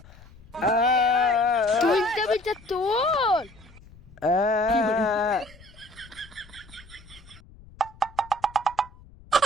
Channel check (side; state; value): left; noise; rumble, 23 dB below the sound